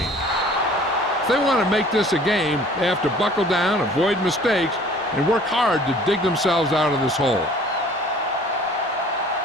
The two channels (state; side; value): normal; both; correlation 0.51